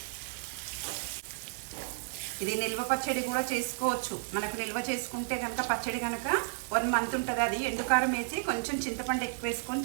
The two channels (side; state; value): left; silent; digital silence